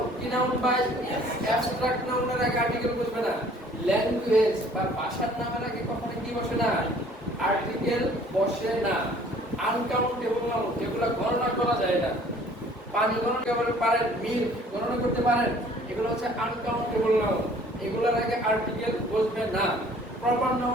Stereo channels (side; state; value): both; normal; correlation 0.54